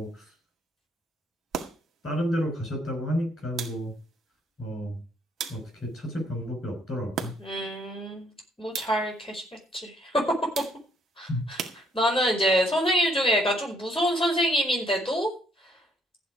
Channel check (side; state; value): both; normal; correlation 0.68